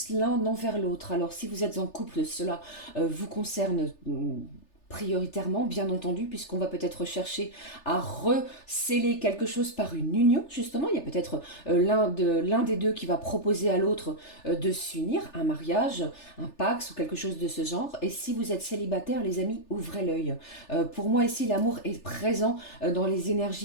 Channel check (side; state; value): right; late; 3.3 ms